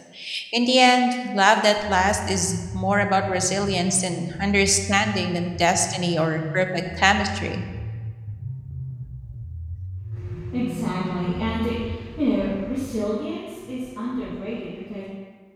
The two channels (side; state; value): both; identical; correlation 1.00